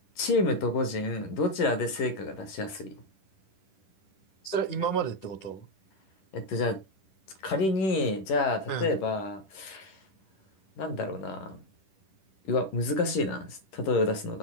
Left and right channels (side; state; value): right; late; 10 ms